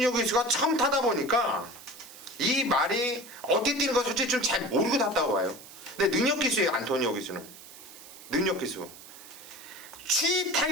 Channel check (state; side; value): noise; right; hiss, 18 dB below the sound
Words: 기수가 처음 타다 보니까 이 말이 어떻게 뛰는 거 솔직히 좀 잘 모르고 탔다고 봐요. 근데 능력 기수예요. 안토니오 기수는 능력 기수. 추이